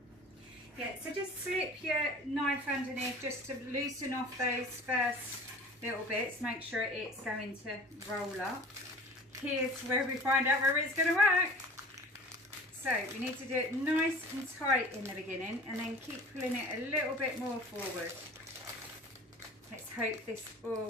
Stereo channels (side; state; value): both; normal; correlation 0.42